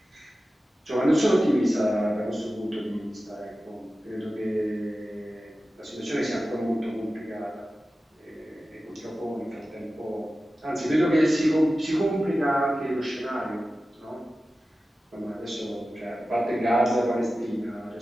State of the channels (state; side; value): normal; both; correlation 0.94